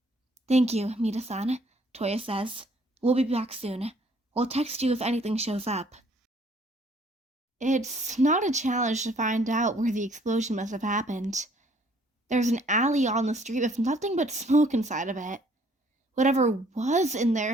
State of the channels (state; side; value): normal; both; correlation 0.61